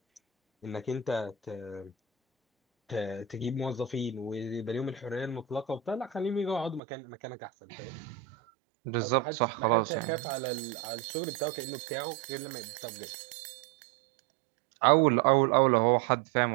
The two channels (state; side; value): drops out; left; at 6.8 s